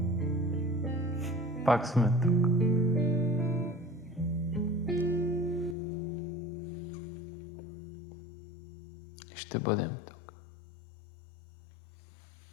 Пак сме тук. И ще бъдем тук.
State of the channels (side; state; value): right; drops out; at 5.8 s